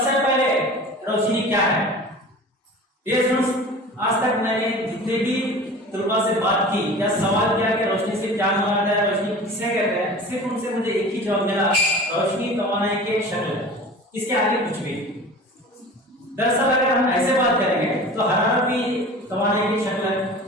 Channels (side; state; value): both; normal; correlation 0.38